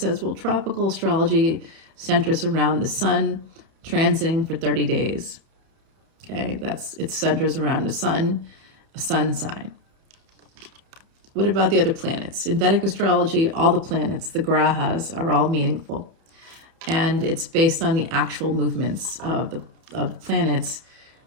well, tropical astrology centers around the sun transiting for 30 days. Okay, it centers around the sun, a sun sign. What about the other planets? In Vedic astrology, all the planets, the grahas, are all meaningful. And it's based on the actual movements of the planets,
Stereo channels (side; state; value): left; late; 31 ms